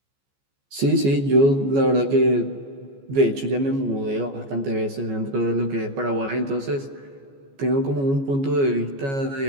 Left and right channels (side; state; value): left; late; 14 ms